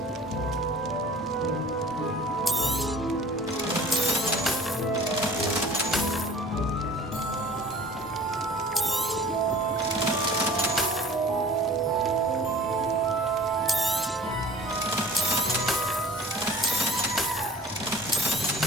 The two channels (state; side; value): normal; both; correlation 0.47